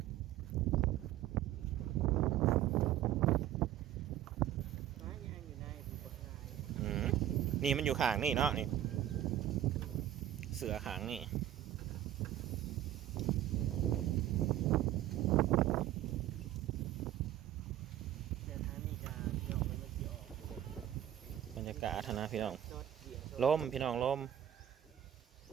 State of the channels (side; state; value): left; quieter; 12.0 dB